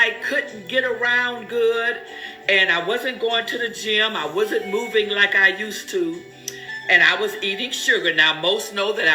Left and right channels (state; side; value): identical; both; correlation 1.00